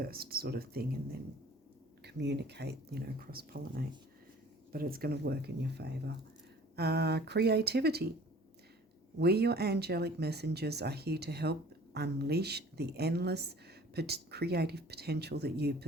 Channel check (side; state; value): both; normal; correlation 0.49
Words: sort of thing, and then communicate, you know, cross-pollinate. But it's going to work in your favour. Creativity. We, your angelic messengers, are here to help unleash the endless creative potential that you